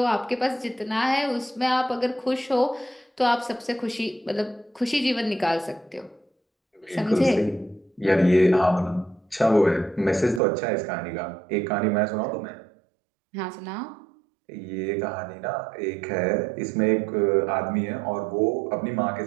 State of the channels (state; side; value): drops out; left; at 10.4 s